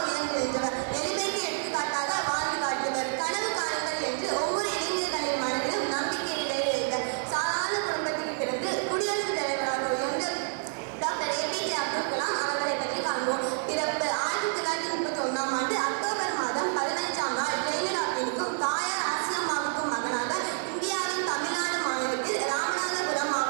உயர்ந்து நின்றவர், எளிமைக்கு எடுத்துக்காட்டாக வாழ்ந்து காட்டியவர், கனவு காணுங்கள் என்று ஒவ்வொரு இளைஞர்களின் மனதிலும் நம்பிக்கை விளைவித்தார். சாதாரண குடும்பத்தில் பிறந்து குடியரசுத் தலைவராக உயர்ந்த டாக்டர் APJ அப்துல் கலாம் அவர்களை பற்றி காண்போம். பிறப்பு 1931ஆம் ஆண்டு அக்டோபர் மாதம் 15ஆம் நாள் ஜெயலலிதாவிற்கும் தாயார் ஆசியம்மாவுக்கும் மகனாக இந்தியாவின் தமிழ்நாடு மாநிலத்தில் ராமநாதபுரம்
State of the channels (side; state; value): left; silent; digital silence